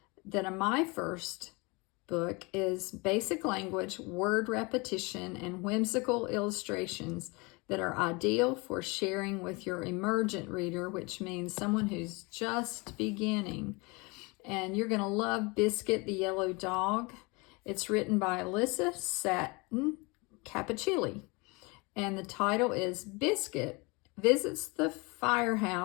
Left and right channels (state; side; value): quieter; right; 27.4 dB